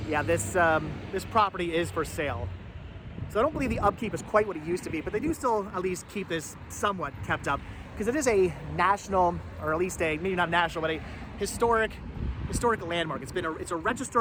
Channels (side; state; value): both; identical; correlation 1.00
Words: yeah, this property is for sale. So I don't believe the upkeep is quite what it used to be, but they do still at least keep this somewhat kept up, because it is a national, or at least maybe not national, but a historic landmark. It's a